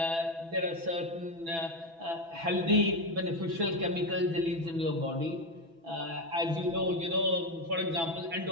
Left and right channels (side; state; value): left; late; 6.0 ms